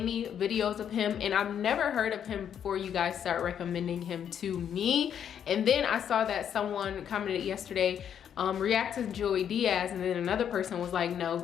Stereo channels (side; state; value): right; quieter; 8.8 dB